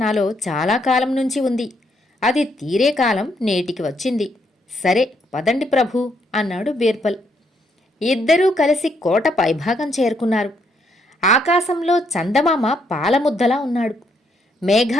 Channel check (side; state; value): both; normal; correlation 0.74